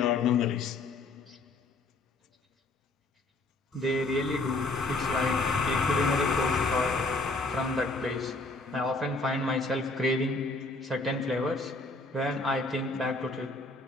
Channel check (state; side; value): quieter; right; 3.1 dB